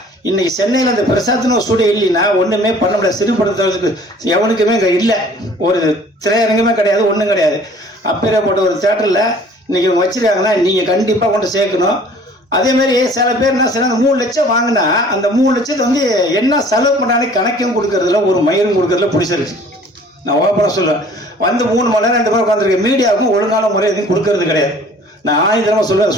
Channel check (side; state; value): both; normal; correlation 0.51